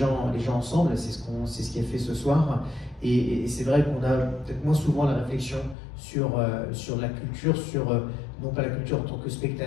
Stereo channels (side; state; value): right; drops out; at 5.8 s